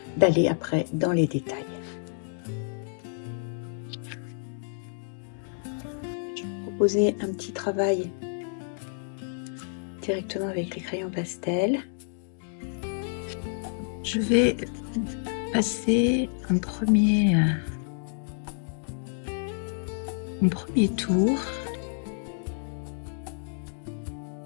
d'aller après dans les détails. Je vais vous proposer un petit travail directement avec les crayons pastel. Je vais passer un premier tour.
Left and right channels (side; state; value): right; silent; digital silence